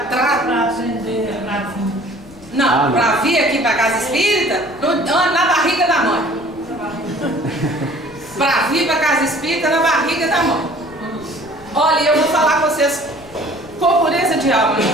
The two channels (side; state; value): left; noise; rumble, 23 dB below the sound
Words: Para aprender a vir. Não, para vir aqui para a casa espírita, na barriga da mãe. Para vir para a casa espírita, na barriga da mãe. Olha, eu vou falar com vocês com pureza de alma,